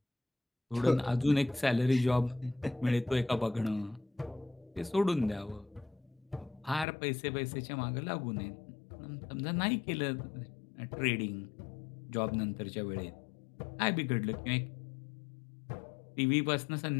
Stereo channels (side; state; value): right; drops out; at 6.9 s